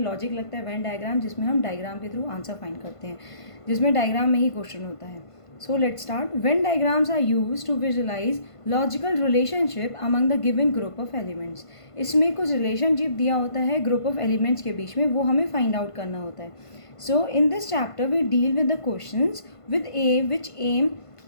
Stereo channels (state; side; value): late; right; 1.5 ms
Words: लॉजिक लगता है, वेन डायग्राम जिसमें हम डायग्राम के थ्रू आंसर फाइंड करते हैं, जिसमें डायग्राम में ही क्वेश्चन होता है। So let's start. Venn diagrams are used to visualize logical relationship among the given group of elements. इसमें कुछ रिलेशनशिप दिया होता है ग्रुप ऑफ एलिमेंट्स के बीच में, वो हमें फाइंड आउट करना होता है। So in this chapter we deal with the questions with a which aim